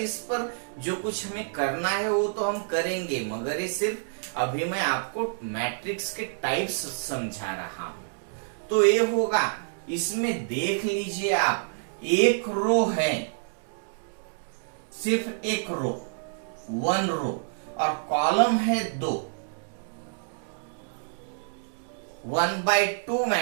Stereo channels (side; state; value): left; silent; digital silence